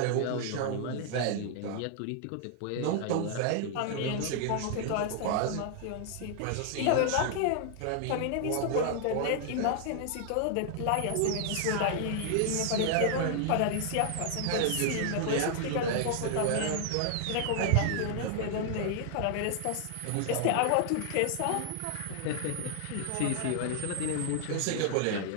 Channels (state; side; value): different; both; correlation 0.00